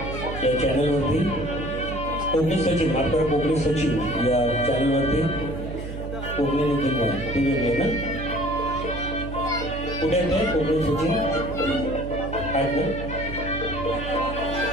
या चॅनलवरती. कोकणी सचिन आपल्या कोकणी सचिन या चॅनलवरती कोकणी निखिल ती वेगळी ना कुठे आहे कोकणी सचिन आहेत ना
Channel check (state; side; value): noise; right; hum, 8 dB below the sound